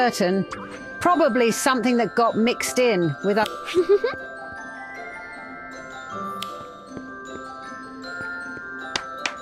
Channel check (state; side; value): identical; both; correlation 1.00